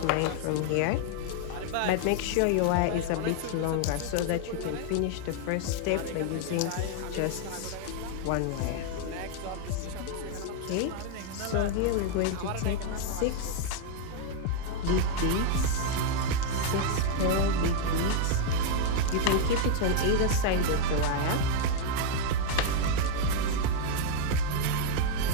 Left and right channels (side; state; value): both; different; correlation 0.00